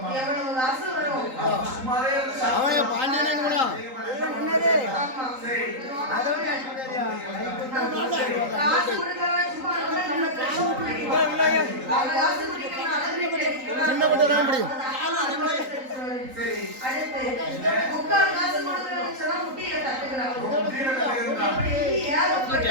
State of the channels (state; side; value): late; left; 3.8 ms